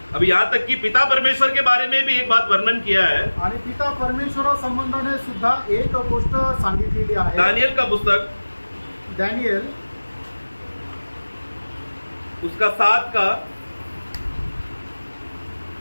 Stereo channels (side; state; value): both; inverted; correlation -1.00